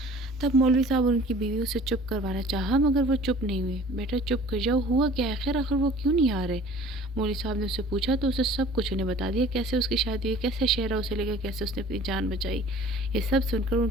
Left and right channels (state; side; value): normal; both; correlation 0.48